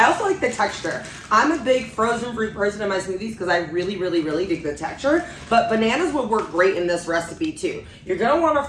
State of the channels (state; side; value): identical; both; correlation 1.00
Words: also like the texture. I'm a big frozen fruit person in my smoothies because I really, really, really dig the texture. But bananas would work great in this recipe too. You're gonna want a